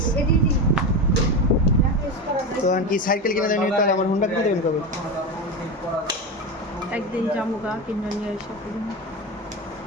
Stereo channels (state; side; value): normal; both; correlation 0.19